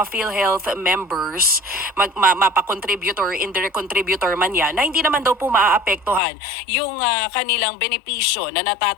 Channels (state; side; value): drops out; right; at 6.2 s